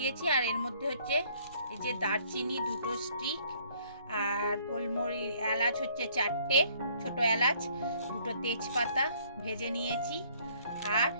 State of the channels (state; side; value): inverted; both; correlation -0.61